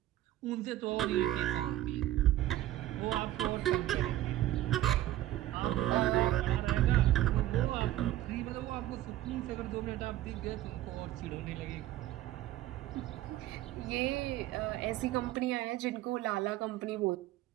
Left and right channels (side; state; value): left; quieter; 14.2 dB